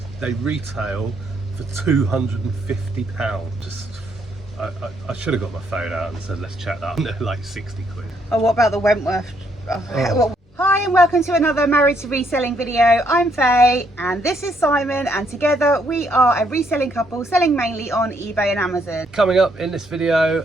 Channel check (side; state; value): both; normal; correlation 0.72